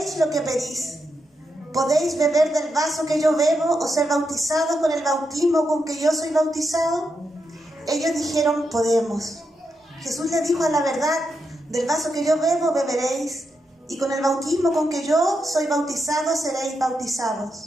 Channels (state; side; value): normal; both; correlation 0.84